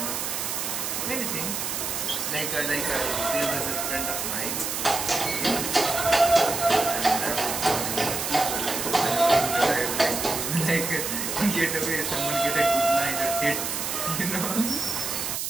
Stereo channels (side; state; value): right; noise; hiss, 3 dB below the sound